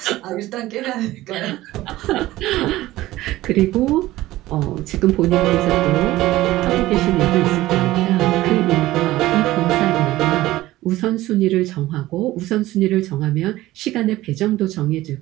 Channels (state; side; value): quieter; left; 16.6 dB